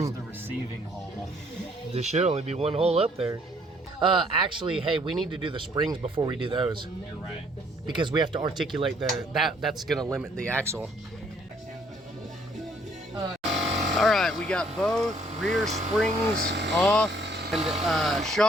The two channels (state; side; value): normal; both; correlation 0.63